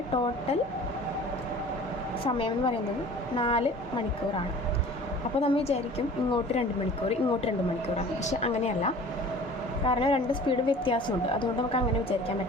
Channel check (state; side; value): normal; both; correlation 0.44